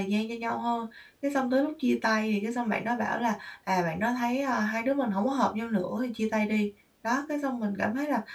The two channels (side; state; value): both; identical; correlation 1.00